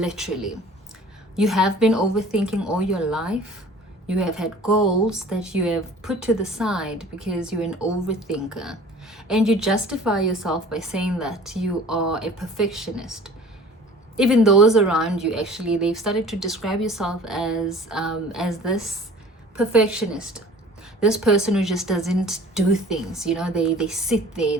You have been overthinking all your life. You have had goals that you have put to the side because you're an overthinker. And you justify yourself by saying that you are a perfectionist. Even those around you, actually, they've started to describe yourself as this perfectionist. This person who just doesn't do things, they sit there,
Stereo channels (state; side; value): normal; both; correlation 0.46